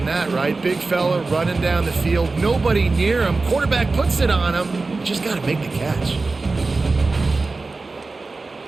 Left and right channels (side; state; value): left; quieter; 3.7 dB